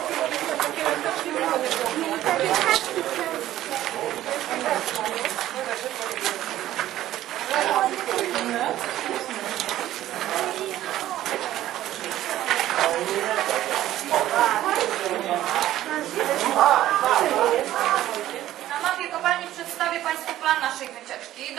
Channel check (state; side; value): quieter; left; 13.6 dB